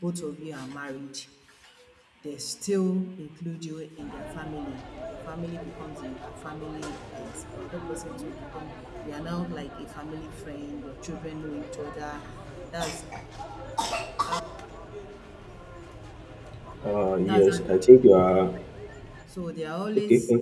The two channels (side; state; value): both; identical; correlation 1.00